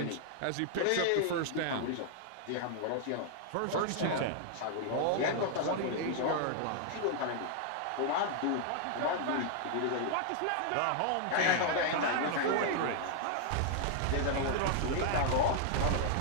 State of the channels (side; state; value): both; different; correlation 0.00